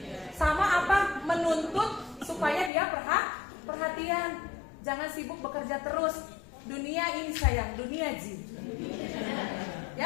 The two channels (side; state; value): right; drops out; at 2.7 s